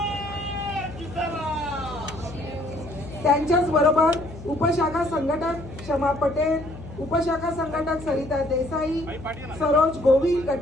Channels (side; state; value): left; noise; hum, 14 dB below the sound